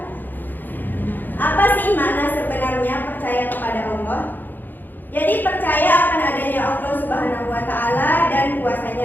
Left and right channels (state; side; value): late; right; 0.089 ms